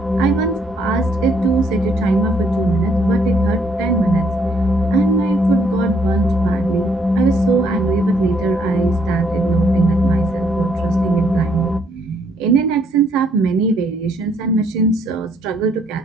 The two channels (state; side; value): normal; both; correlation 0.69